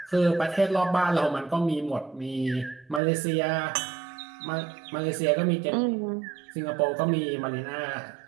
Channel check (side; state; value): left; drops out; at 3.0 s